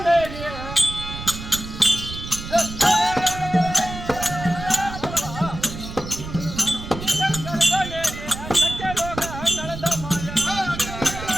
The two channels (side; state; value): right; noise; rumble, 10 dB below the sound